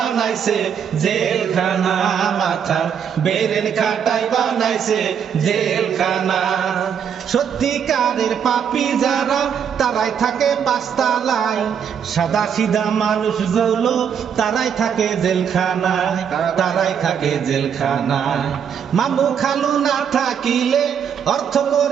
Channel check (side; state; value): left; quieter; 7.8 dB